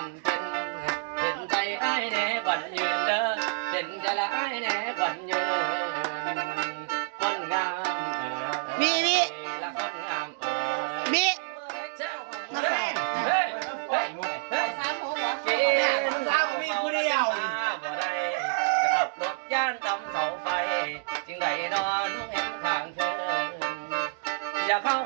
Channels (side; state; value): left; silent; digital silence